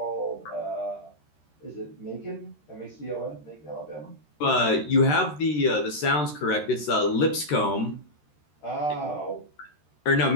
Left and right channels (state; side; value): late; right; 13 ms